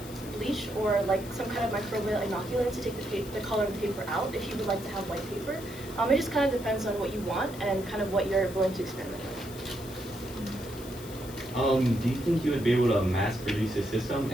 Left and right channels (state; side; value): noise; left; hiss, 16 dB below the sound